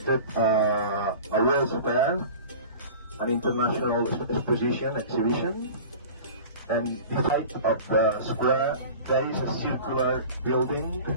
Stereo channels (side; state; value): both; inverted; correlation -0.39